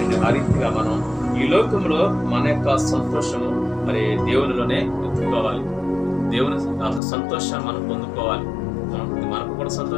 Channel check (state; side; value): drops out; right; at 7.0 s